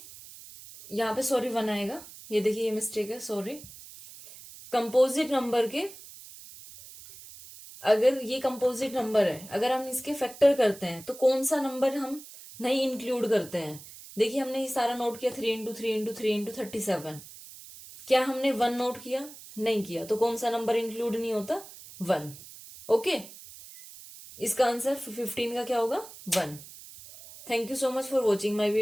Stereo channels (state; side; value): noise; right; hiss, 17 dB below the sound